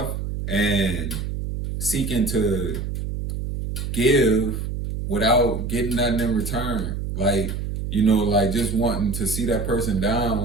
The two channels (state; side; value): noise; right; hum, 4 dB below the sound